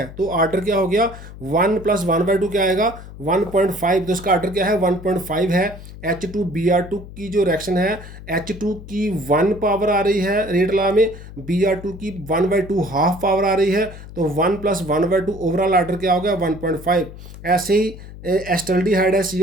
तो ऑर्डर क्या हो गया, 1 + 1/2 क्या आएगा, 1.5, तो इसका ऑर्डर क्या है, 1.5 है। H2Br2 की जो रिएक्शन है, H2 की 1 पावर आ रही है रेट लॉ में, Br2 की 1/2 हाफ पावर आ रही है, तो 1 + 1/2 ओवरऑल ऑर्डर क्या हो गया, 1.5। ऐसे ही एस्टल्डिहाइड है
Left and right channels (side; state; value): left; noise; hum, 15 dB below the sound